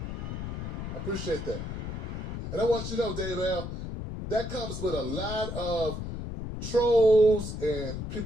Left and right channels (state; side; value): noise; left; rumble, 6 dB below the sound